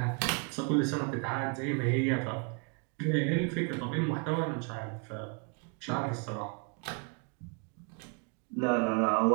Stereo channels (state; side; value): quieter; left; 36.0 dB